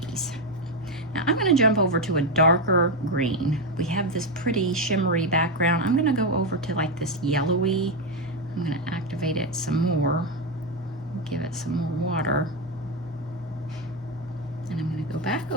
Now I'm going to jump over to a darker green. We have this pretty shimmery background. I'm going to go over to like this yellowy. I'm going to activate it some more, give it some more water, and I'm going to go back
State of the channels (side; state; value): both; normal; correlation 0.08